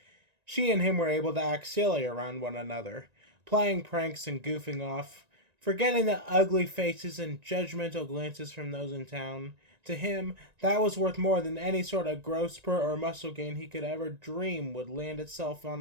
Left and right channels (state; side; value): late; left; 1.9 ms